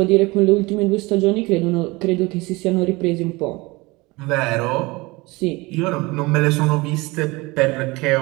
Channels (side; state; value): left; quieter; 23.3 dB